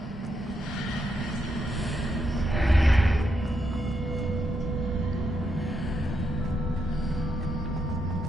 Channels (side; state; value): both; normal; correlation 0.81